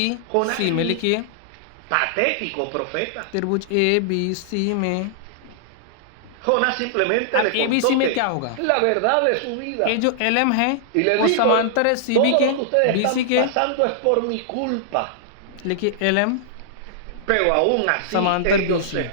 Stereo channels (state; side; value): different; both; correlation -0.01